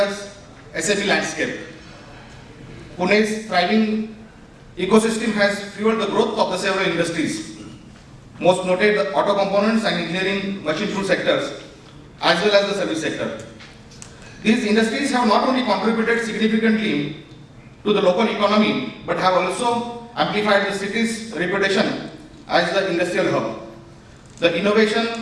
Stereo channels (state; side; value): identical; both; correlation 1.00